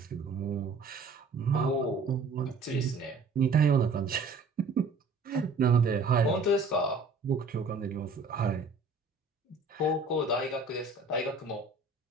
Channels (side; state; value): left; quieter; 3.8 dB